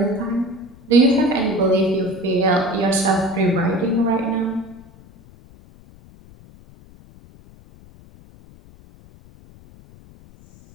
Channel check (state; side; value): noise; left; rumble, 24 dB below the sound